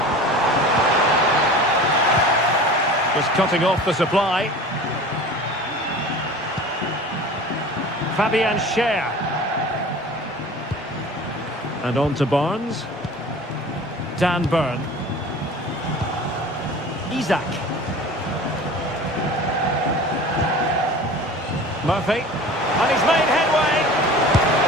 Just cutting off the supply. Fabian Schär. And on to Barnes. Dan Burn. Isak. Murphy. And he's made headway.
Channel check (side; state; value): both; normal; correlation 0.39